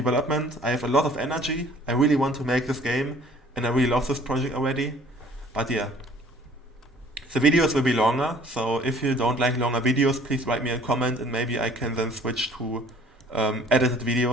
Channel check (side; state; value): both; normal; correlation 0.54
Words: I have a lot of energy. I really want to make this game, and I really love this project already. But yeah, the videos will be longer, so if you don't like longer videos, please write me a comment, and maybe I can then switch to edited